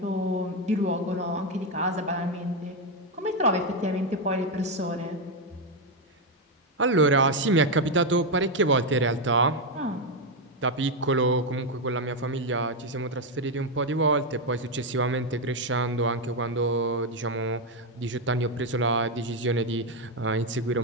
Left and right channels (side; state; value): both; normal; correlation 0.05